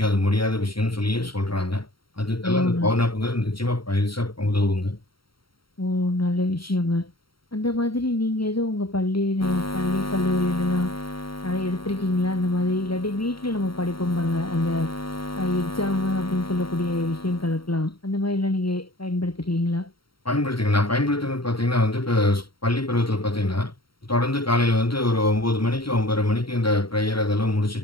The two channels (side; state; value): right; late; 0.74 ms